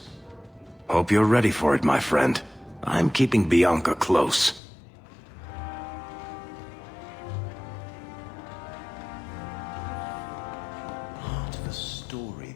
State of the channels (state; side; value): drops out; right; at 4.6 s